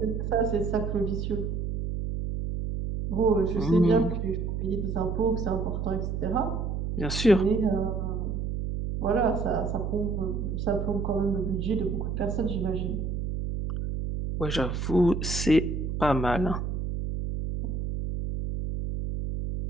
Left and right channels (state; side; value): noise; right; hum, 3 dB below the sound